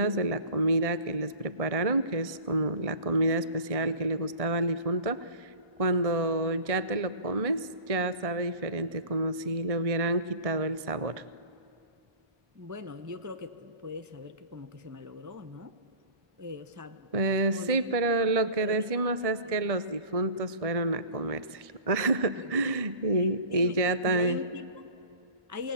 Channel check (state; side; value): late; left; 1.6 ms